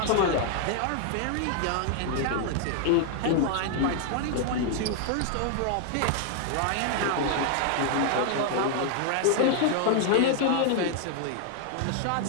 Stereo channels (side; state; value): both; different; correlation 0.00